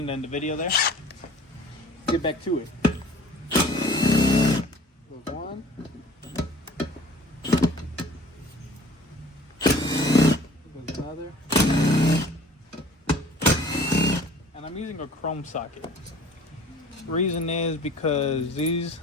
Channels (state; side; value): normal; both; correlation 0.49